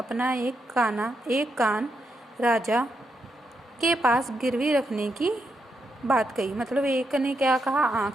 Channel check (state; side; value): normal; both; correlation 0.82